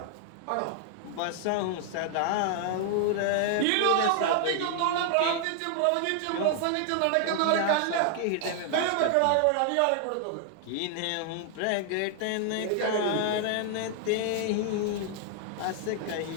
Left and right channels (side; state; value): both; different; correlation 0.00